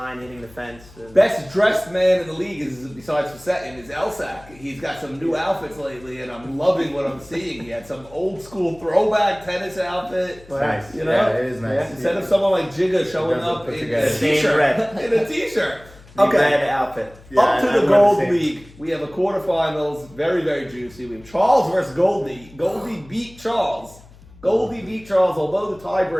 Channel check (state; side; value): noise; left; hum, 23 dB below the sound